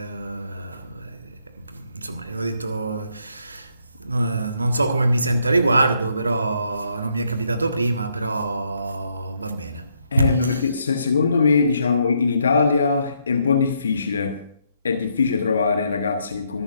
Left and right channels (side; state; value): both; inverted; correlation -0.74